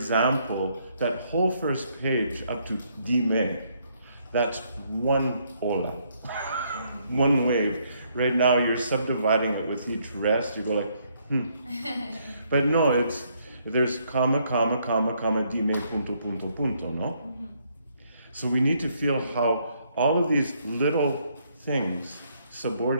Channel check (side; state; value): both; inverted; correlation -0.71